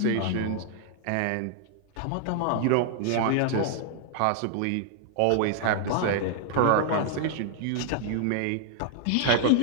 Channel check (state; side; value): different; both; correlation 0.00